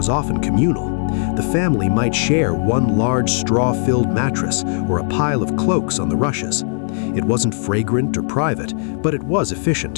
often communal. The family might share one large straw-filled mattress or a pile of cloaks on the rushes. It wasn't fragrant or private, but it was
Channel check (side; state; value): right; silent; digital silence